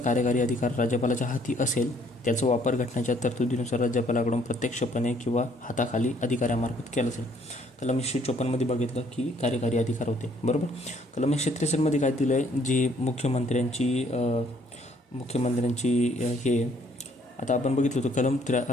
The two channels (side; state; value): both; normal; correlation 0.64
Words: अधिकार राज्यपालाच्या हाती असेल त्याचा वापर घटनेच्या तरतुदीनुसार राज्यपालाकडून प्रत्यक्षपणे किंवा हाताखाली अधिकाऱ्यामार्फत केला असेल. कलम 154 बघितलं की कार्यकारी अधिकार होते, बरोबर. कलम 163 काय दिलं आहे, जी मुख्यमंत्र्यांची हे आता आपण बघितलं होतं कलम